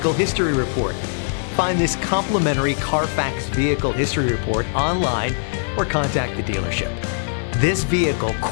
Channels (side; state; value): right; silent; digital silence